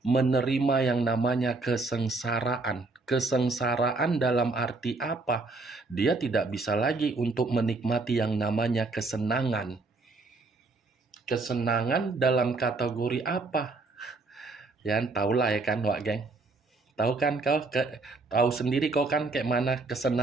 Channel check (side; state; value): left; quieter; 3.5 dB